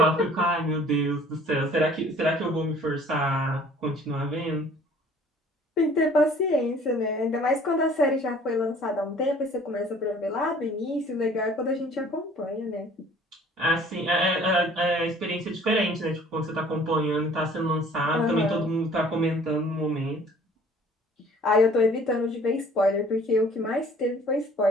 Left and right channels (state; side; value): normal; both; correlation 0.52